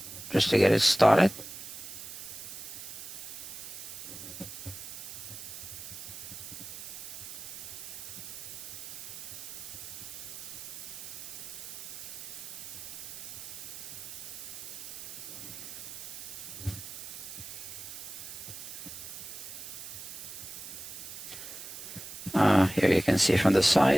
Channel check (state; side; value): noise; right; hiss, 10 dB below the sound